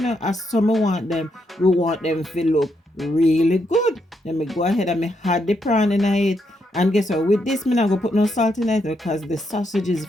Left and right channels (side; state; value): both; normal; correlation 0.79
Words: as some want them. We want them to look really good. Then we go ahead and add the prawn in it. And guess what? With this, I'm not going to put no salt in it because the sausage is